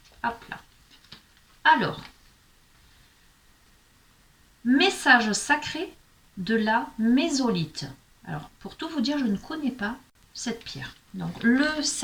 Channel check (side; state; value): both; identical; correlation 1.00